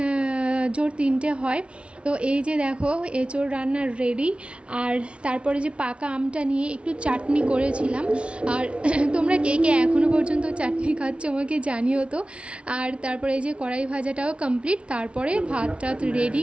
জোর 3টে হয়। তো এই যে দেখো এঁচোড় রান্নার রেডি। আর তারপরে যে পাকা আমটা নিয়ে একটু চাটনি করেছিলাম। আর তোমরা কে কে এখনও পর্যন্ত চাটনি খাচ্ছ আমাকে জানিও তো। আর তারপরে এই যে কড়াই ভাজাটাও কমপ্লিট, তারপরে ভাতটা রেডি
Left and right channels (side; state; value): left; late; 0.059 ms